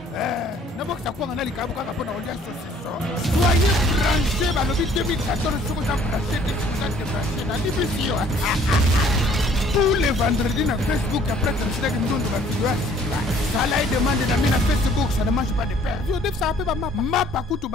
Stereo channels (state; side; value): normal; both; correlation 0.58